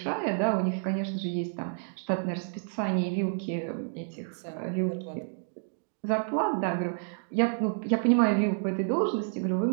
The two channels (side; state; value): left; silent; digital silence